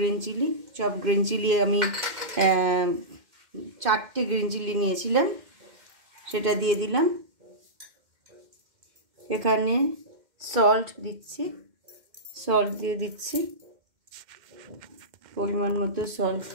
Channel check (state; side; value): late; left; 2.1 ms